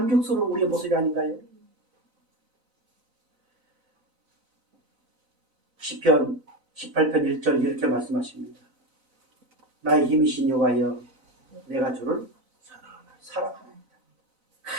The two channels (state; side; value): late; left; 4.0 ms